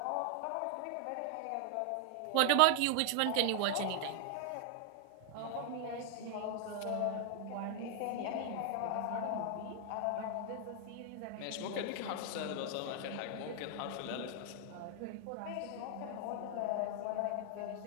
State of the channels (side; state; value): both; different; correlation 0.00